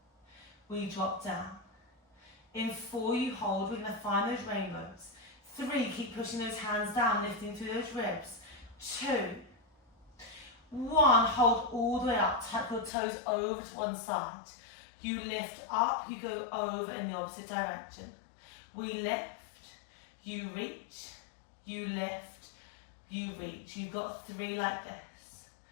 We drop down. In 4, you hold. We're going to find those rainbows. 3, keep pushing those hands down, lifting through those ribs. 2, 1, hold all the way up. Tuck your toes over to one side. You lift up, you go over in the opposite direction. We lift, you reach, you lift, you reach. You've got 3 like this.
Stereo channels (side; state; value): right; drops out; at 12.9 s